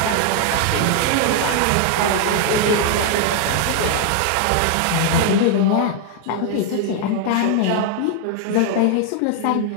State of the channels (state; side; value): different; both; correlation 0.00